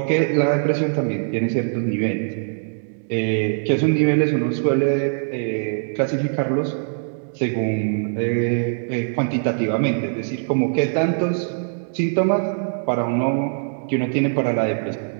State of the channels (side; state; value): left; silent; digital silence